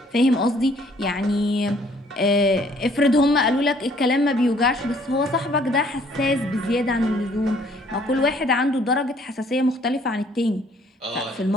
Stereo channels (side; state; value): both; normal; correlation 0.61